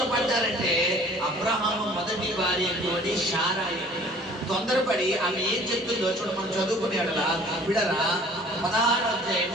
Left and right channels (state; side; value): normal; both; correlation 0.51